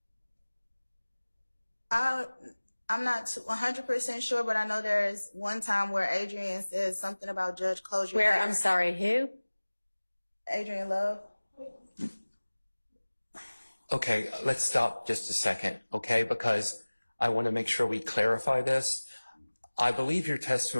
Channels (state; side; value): inverted; both; correlation -1.00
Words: I'm not 100% sure, but I know there's one time where Adrian says something about Judge Closure. Where, I'm sorry, who? Adrian Love. Okay, let's stop just a second, okay? Because I want to make sure we clarify this. I believe your